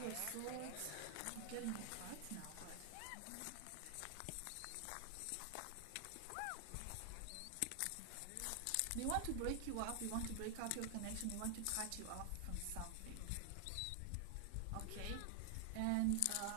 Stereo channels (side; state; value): both; different; correlation 0.00